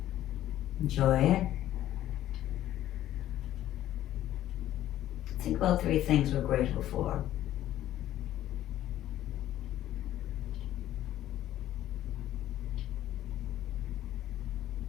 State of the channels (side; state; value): right; quieter; 13.1 dB